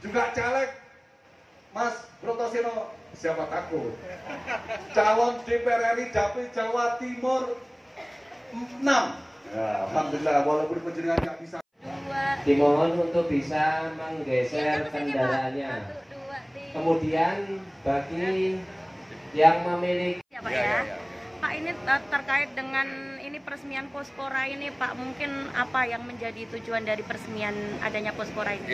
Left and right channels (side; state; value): both; identical; correlation 1.00